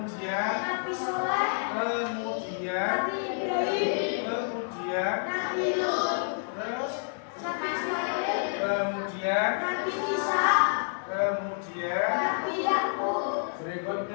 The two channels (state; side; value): silent; right; digital silence